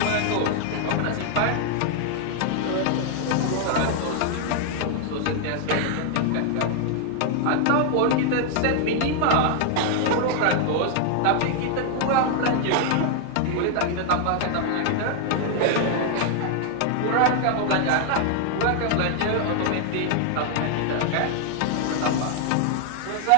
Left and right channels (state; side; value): different; both; correlation 0.00